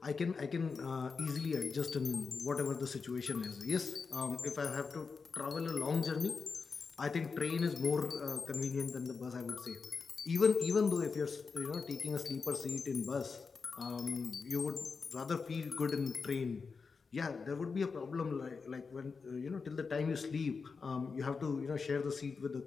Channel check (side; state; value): right; quieter; 5.0 dB